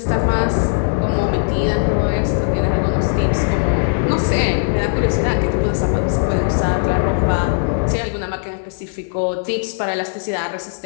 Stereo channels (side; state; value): right; silent; digital silence